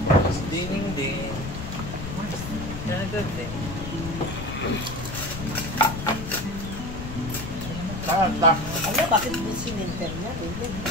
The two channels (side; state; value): left; noise; rumble, 7 dB below the sound